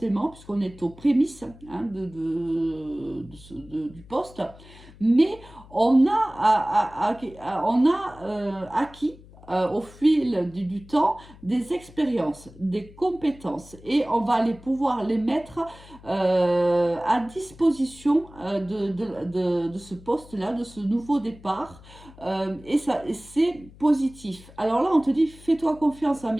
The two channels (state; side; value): noise; left; hum, 21 dB below the sound